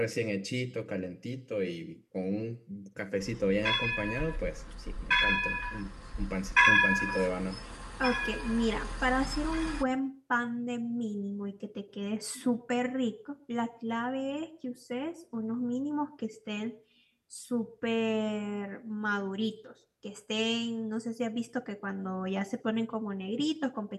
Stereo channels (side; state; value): both; identical; correlation 1.00